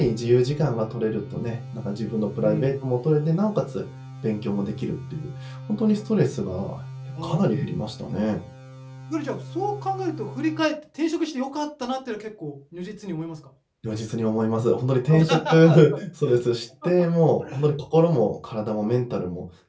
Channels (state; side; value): identical; both; correlation 1.00